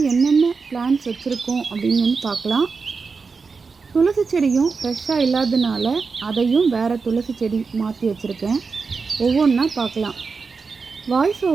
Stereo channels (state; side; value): quieter; left; 4.8 dB